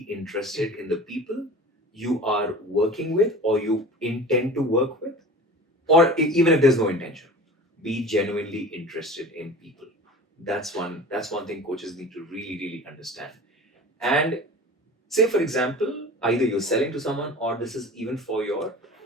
interested in the people you are working with or you intend to work with, or even if there's no intention, be genuinely interested in people. That's one thing coaches need to really understand. And say, for example, either you're selling to someone or this is even for your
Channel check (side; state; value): both; normal; correlation 0.38